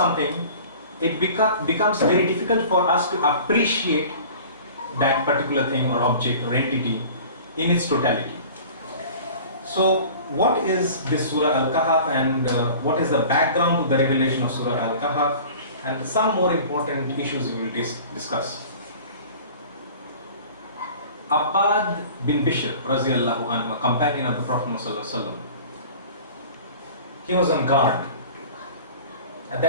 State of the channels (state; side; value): inverted; both; correlation -0.42